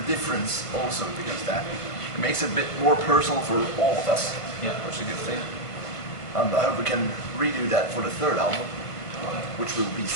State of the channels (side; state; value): right; late; 1.4 ms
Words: difference also, because that makes it a bit more personal for all of us, Yeah. which is a good thing. And I hope we can redo that for the third album, which will be